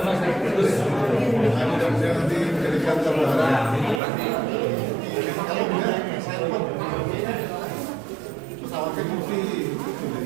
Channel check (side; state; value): left; drops out; at 4.0 s